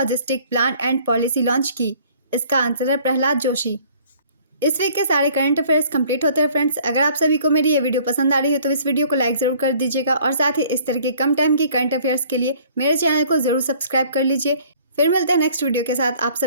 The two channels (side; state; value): both; inverted; correlation -0.55